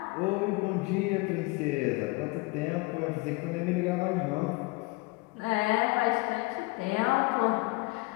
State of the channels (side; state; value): right; quieter; 23.8 dB